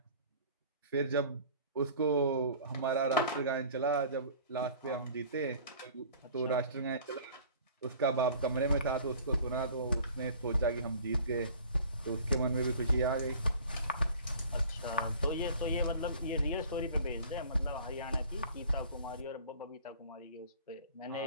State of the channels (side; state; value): both; inverted; correlation -0.47